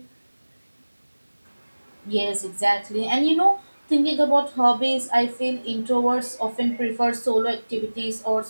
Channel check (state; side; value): inverted; both; correlation -1.00